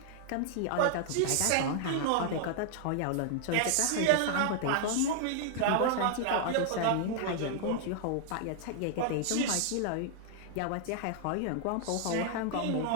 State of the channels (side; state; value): both; different; correlation 0.00